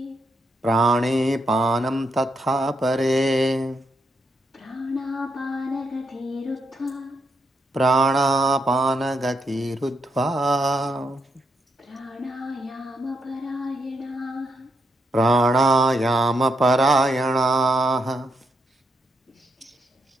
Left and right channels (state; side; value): normal; both; correlation 0.80